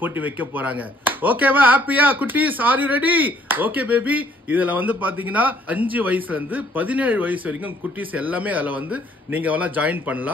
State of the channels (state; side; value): normal; both; correlation 0.63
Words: போட்டி வைக்க போறாங்க. ஓகேவா? ஹாப்பியா குட்டீஸ்? Are you ready? Okay baby. இதுல வந்து பாத்தீங்கன்னா 5 வயசுல இருந்து 17 வயசு வரைக்கும் குட்டீஸ் எல்லாமே அதுல வந்து நீங்க எல்லாம் ஜாயின்